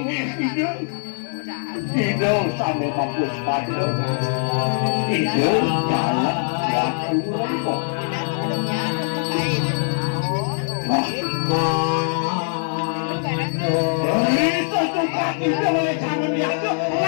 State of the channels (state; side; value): silent; right; digital silence